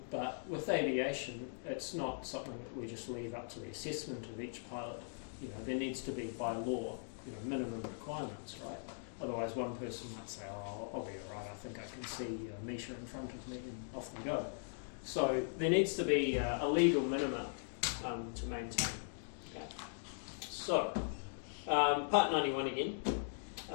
but with aviation, it's not something that we just leave up to the assessment of each pilot. You know, there needs to be by law, minimum requirements, right? Otherwise, one person might say, "Oh, I'll be all right. I think I can see a metre in front of me," and off we go. So there needs to be a legal minimum to maintain. Okay. So part 91 again.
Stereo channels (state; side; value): silent; right; digital silence